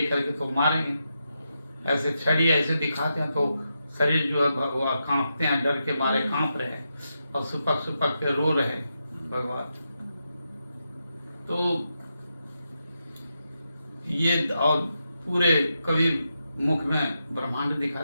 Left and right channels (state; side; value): inverted; both; correlation -0.86